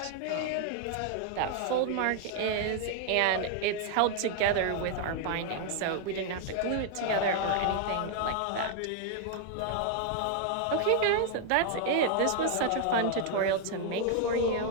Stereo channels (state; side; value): different; both; correlation 0.00